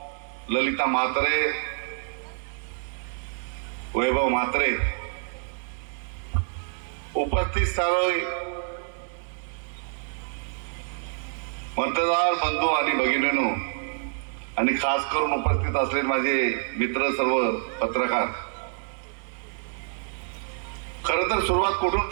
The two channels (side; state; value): left; silent; 60 dB below the other